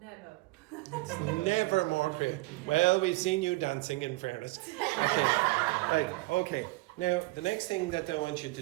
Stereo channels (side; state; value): left; quieter; 22.3 dB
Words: Never. It's never more creative. Well, we've seen you dancing, in fairness. Okay. Right. Okay. Now, the next thing that I want you to